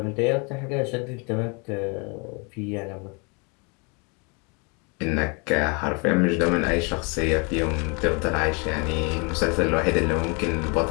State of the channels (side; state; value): right; quieter; 32.5 dB